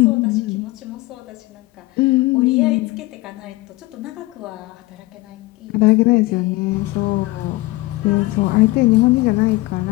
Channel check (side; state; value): right; quieter; 20.7 dB